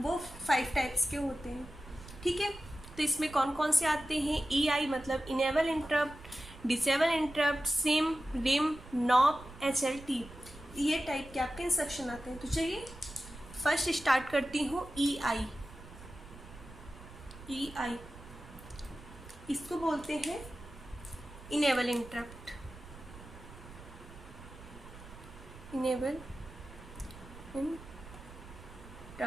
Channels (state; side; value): noise; right; rumble, 16 dB below the sound